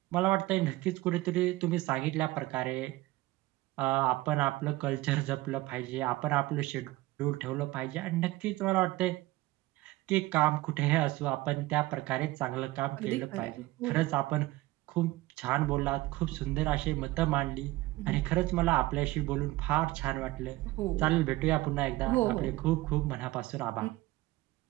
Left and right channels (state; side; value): quieter; left; 18.9 dB